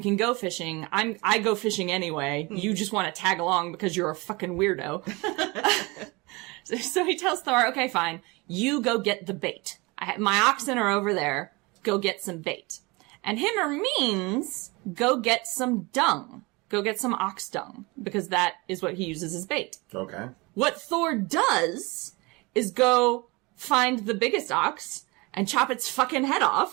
can go fishing. I go fishing anyway. You just want to tag along because you're a fucking weirdo. So he tells Thor, okay, fine, you go get the bait. My oxen are over there. Go get some bait. And Hymir means go get some dung. Go get some ox dung. Because that is what he uses as bait. Okay. What Thor does is go find the biggest ox and chop its fucking head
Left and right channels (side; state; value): left; quieter; 25.5 dB